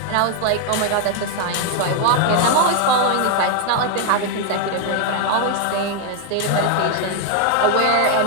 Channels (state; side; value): different; both; correlation 0.00